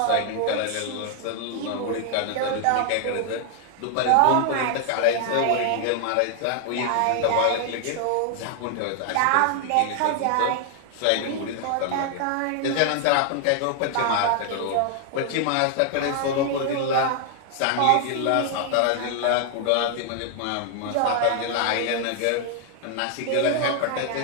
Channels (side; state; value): both; different; correlation 0.00